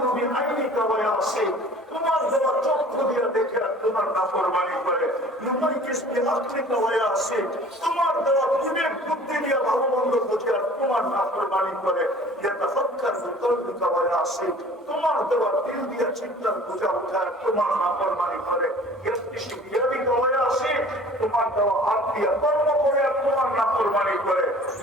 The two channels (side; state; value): both; normal; correlation 0.47